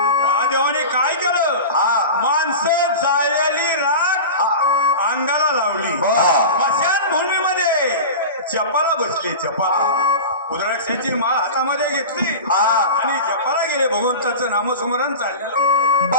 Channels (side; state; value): both; inverted; correlation -0.30